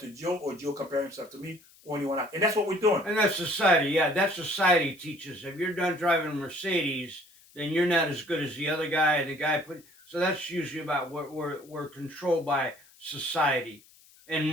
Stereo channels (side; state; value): left; noise; hiss, 27 dB below the sound